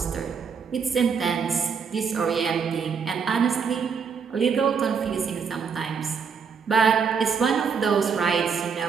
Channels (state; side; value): quieter; left; 6.1 dB